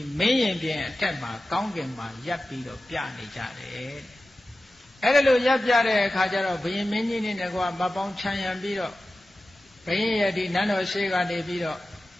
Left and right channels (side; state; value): both; normal; correlation 0.95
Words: မင်းရင်ပြင်အထက်မှာကောင်းကင်မှာရပ်ပြီးတော့ပြနေကြတယ်အဲ့ဒါလို့ရပ်ပြတဲ့အခါကျတော့ဘုရင်မင်းကြီးနဲ့ကွာမပေါင်းချမ်းရံပြီးတော့ဘုရင်ရဲ့ဒီနန်းတော်ရှိကနေပြီးတော့